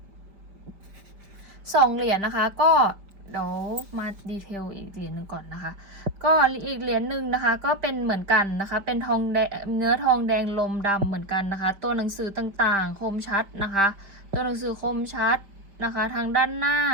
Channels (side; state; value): left; late; 5.1 ms